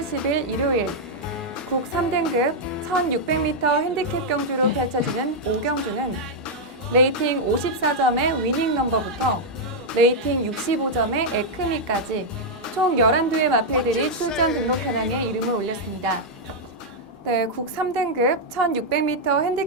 10일 일요일 국 3등급 1600m 핸디캡 경주로 펼쳐지는 5경주는 레이팅 54점의 위닝 넘버부터 레이팅 65점의 에크미까지 총 11두의 마필들이 출전 등록 현황에 이름을 올렸습니다. 네, 국 3등급 1600m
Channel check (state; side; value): normal; both; correlation -0.03